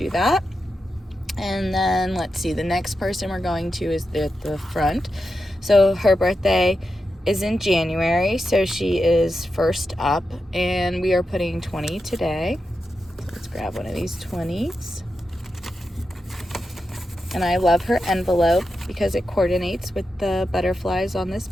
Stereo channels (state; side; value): normal; both; correlation 0.89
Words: that. And then let's see, the next person we're going to is at the front. So her birthday is in January, so she is first up, and we are putting 20 today. So let's grab one of these 20s. And I love her envelope because it coordinates with the butterflies on this